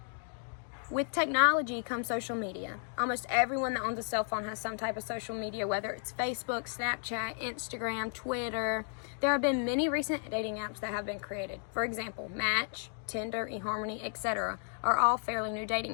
With technology comes social media. Almost everyone that owns a cell phone has some type of social media, whether it's Facebook, Snapchat, Instagram, Twitter. There have been many recent dating apps that have been created. For example, Match, Tinder, eHarmony, etc. are all fairly new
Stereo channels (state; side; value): silent; right; 55 dB below the other